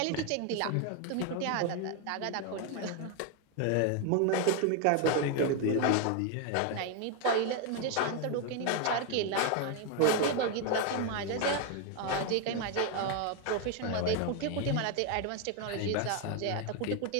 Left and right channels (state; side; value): different; both; correlation 0.01